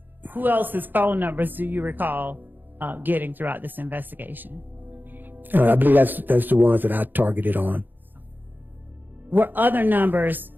else's phone numbers do you recall getting throughout this investigation? I believe that's the ones that I targeted on. Were other numbers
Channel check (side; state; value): left; late; 0.090 ms